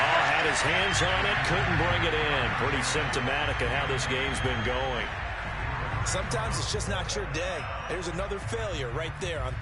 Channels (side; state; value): both; identical; correlation 1.00